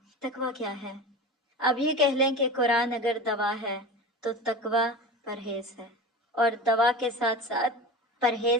تقویٰ کیا ہے؟ اب یہ کہہ لیں کہ قرآن اگر دوا ہے تو تقویٰ پرہیز ہے، اور دوا کے ساتھ ساتھ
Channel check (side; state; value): both; normal; correlation 0.30